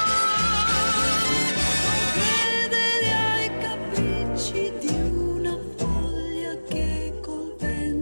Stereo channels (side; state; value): both; inverted; correlation -1.00